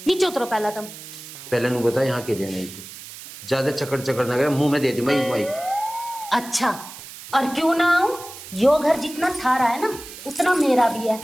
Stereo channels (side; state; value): right; noise; hiss, 14 dB below the sound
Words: नीचे उतरो। पहला तम पहले नु बता यहाँ के लिए नहीं, तू ज्यादा चकड़ ना करे, मुंह में दे दी माइक। अच्छा, और क्यों ना आऊं? यो घर जितना थारा है ना उतना मेरा भी है,